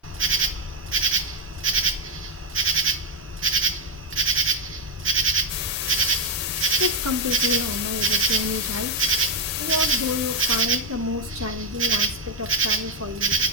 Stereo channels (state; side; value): normal; both; correlation 0.03